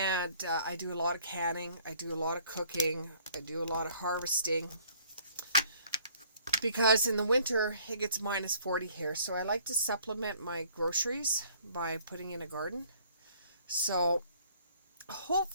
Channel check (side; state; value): both; inverted; correlation -0.58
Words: I do a lot of canning, I do a lot of cooking, I do a lot of harvesting. Because in the winter, it gets minus 40 here. So I like to supplement my groceries by putting in a garden. So